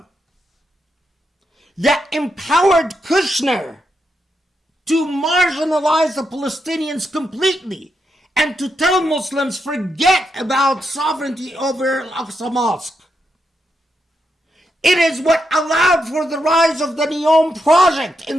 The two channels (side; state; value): both; normal; correlation 0.83